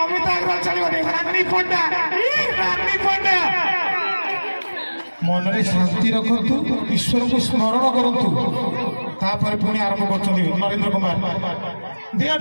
ଅଗ୍ରୱାଲ ଚାଲିବନି ରାନୀ ପଣ୍ଡା ମନରେ ଶାନ୍ତି ରଖନ୍ତୁ ଈଶ୍ୱରଙ୍କୁ ସ୍ମରଣ କରନ୍ତୁ ତାପରେ ପୁଣି ଆରମ୍ଭ କରୁଛନ୍ତି ନରେନ୍ଦ୍ର କୁମାର ଦିଅ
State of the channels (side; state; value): both; inverted; correlation -1.00